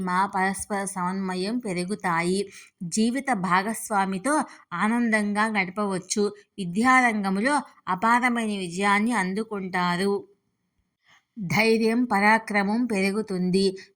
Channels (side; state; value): both; identical; correlation 1.00